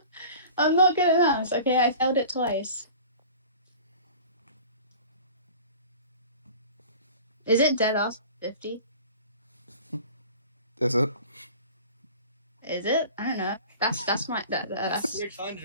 I'm not good at maths. Okay, I failed it twice. Is it dead ass 50? Is it? Is it? I don't know. That's my that's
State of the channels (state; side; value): inverted; both; correlation -0.42